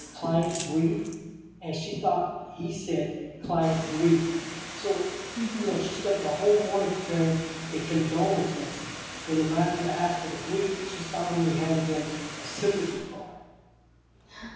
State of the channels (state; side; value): identical; both; correlation 1.00